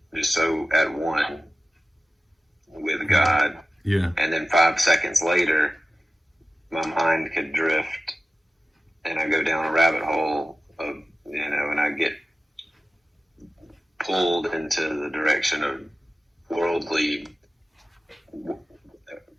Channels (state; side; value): normal; both; correlation 0.95